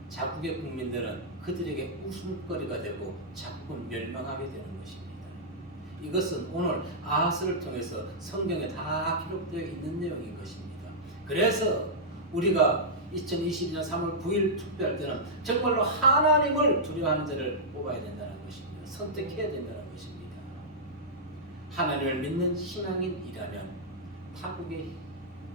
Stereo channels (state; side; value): normal; both; correlation -0.10